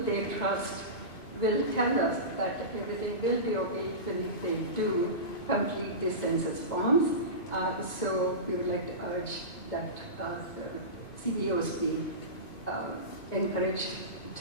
trust will tell us that everything will be okay even if they do complete the census forms. So we would like to urge that CEOs be encouraged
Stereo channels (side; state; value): right; late; 2.3 ms